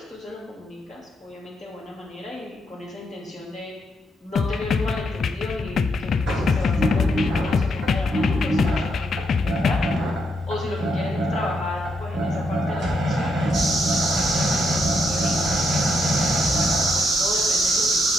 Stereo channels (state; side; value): normal; both; correlation 0.78